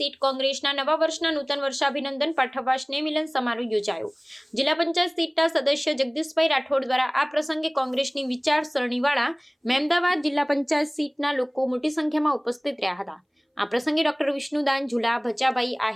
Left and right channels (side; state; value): both; identical; correlation 1.00